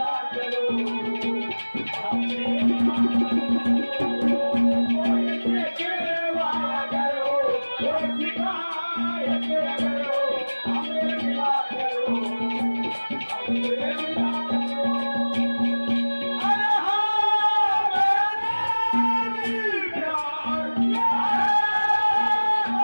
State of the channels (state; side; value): inverted; both; correlation -1.00